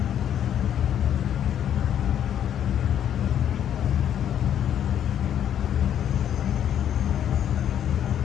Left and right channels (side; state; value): right; quieter; 9.9 dB